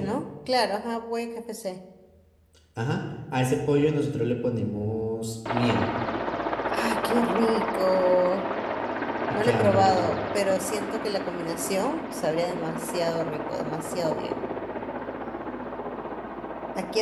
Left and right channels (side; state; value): both; identical; correlation 1.00